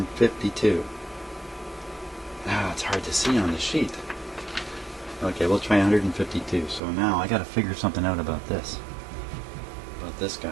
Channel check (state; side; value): drops out; left; at 6.8 s